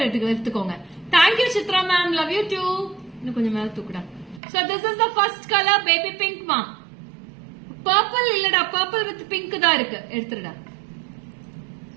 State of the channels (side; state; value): left; drops out; at 4.4 s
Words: எடுத்துக்கோங்க. Thank you Chitra ma'am, love you too. இன்னும் கொஞ்சம் மேல தூக்குடா. So this is the first color, baby pink ma'am. Purple இல்லடா, purple with pink தான் இருக்கு. எடுத்துடா.